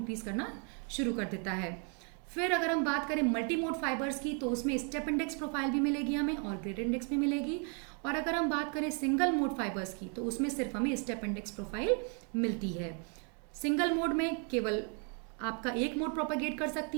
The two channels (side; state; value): left; quieter; 39.4 dB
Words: करना शुरू कर देता है। फिर अगर हम बात करें मल्टी मोड फाइबर्स की, तो उसमें स्टेप इंडेक्स प्रोफाइल भी मिलेगी हमें और ग्रेडेड इंडेक्स भी मिलेगी। और अगर हम बात करें सिंगल मोड फाइबर्स की, तो उसमें सिर्फ हमें स्टेप इंडेक्स प्रोफाइल मिलती है। सिंगल मोड में केवल आपका एक मोड प्रोपागेट कर